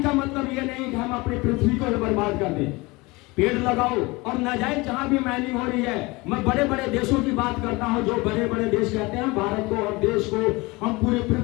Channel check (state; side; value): quieter; right; 23.7 dB